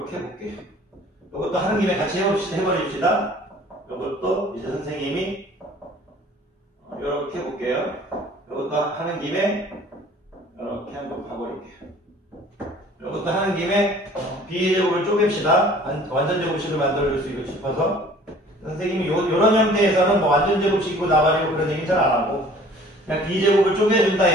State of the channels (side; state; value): both; normal; correlation 0.51